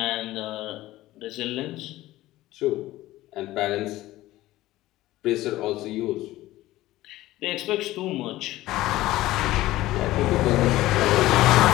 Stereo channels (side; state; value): right; quieter; 16.4 dB